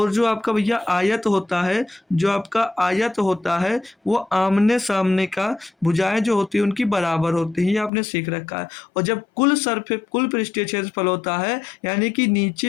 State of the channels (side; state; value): right; drops out; at 7.9 s